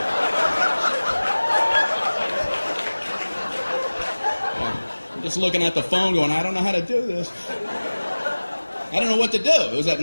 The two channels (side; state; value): both; inverted; correlation -1.00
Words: Just looking at the phone going, I don't know how to do this. I don't know what to do. It was at